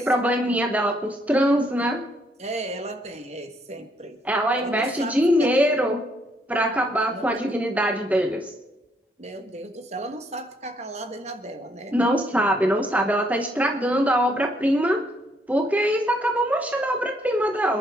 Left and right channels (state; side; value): normal; both; correlation 0.71